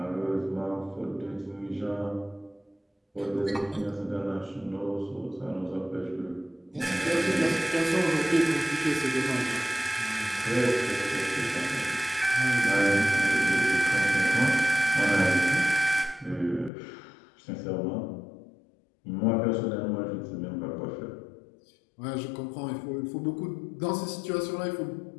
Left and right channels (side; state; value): right; drops out; at 16.7 s